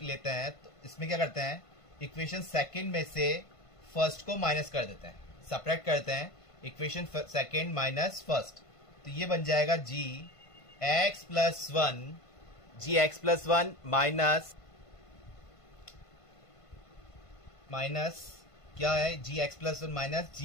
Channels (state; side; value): late; right; 1.5 ms